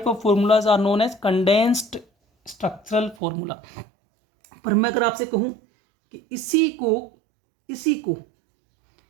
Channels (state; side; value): drops out; left; at 3.2 s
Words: of formulas are known as condensed structural formula. पर मैं अगर आपसे कहूं कि इसी को